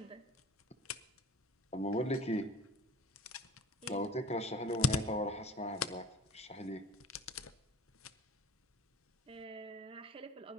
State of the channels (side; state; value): both; normal; correlation 0.42